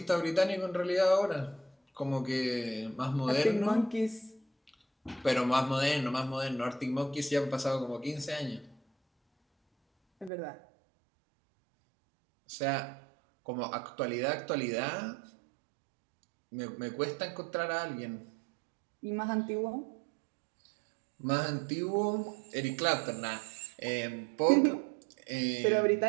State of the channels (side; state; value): left; drops out; at 10.3 s